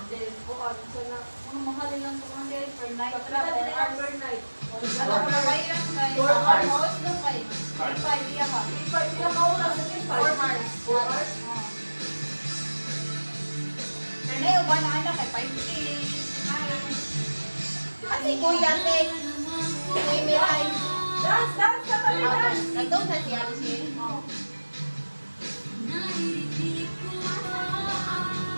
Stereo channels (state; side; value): inverted; both; correlation -1.00